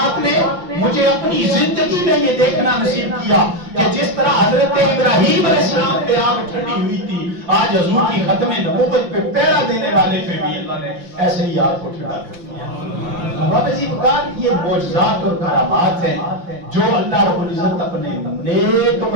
نے مجھے اپنی زندگی میں یہ دیکھنا نصیب کیا کہ جس طرح حضرت ابراہیم علیہ السلام پہ آگ ٹھنڈی ہوئی تھی، آج حضور کی ختم نبوت پہ پہرا دینے والے پہ بھی اللہ نے ایسے ہی آگ کو ٹھنڈا کر دیا۔ بابا جی بکار یہ معجزات اور کرامات ہیں جو اللہ رب العزت اپنے نیک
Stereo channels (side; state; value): left; late; 5.7 ms